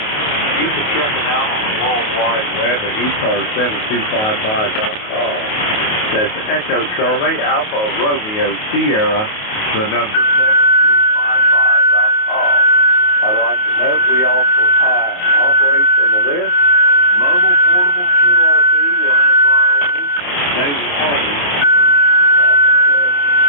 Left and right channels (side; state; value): right; late; 28 ms